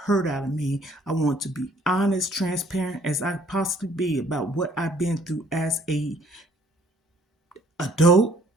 out of me. I want to be honest, transparent as I possibly be about what I've been through as a adult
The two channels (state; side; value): normal; both; correlation 0.60